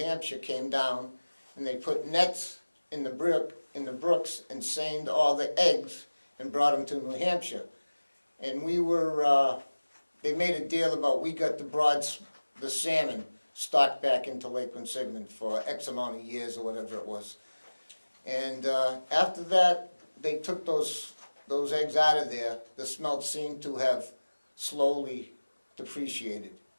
came down and they put nets in the brooks and seined all the eggs and brought them to New Hampshire. And we were, they made a deal about we got the salmon stocked back into Lake Quinsigamond for X amount of years or whatever it was. And after that, they took those eggs out of there. The smelt seemed to have slowly depreciated.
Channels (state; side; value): inverted; both; correlation -1.00